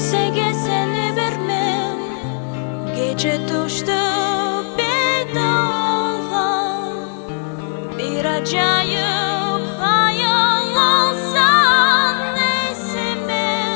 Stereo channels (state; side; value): silent; right; digital silence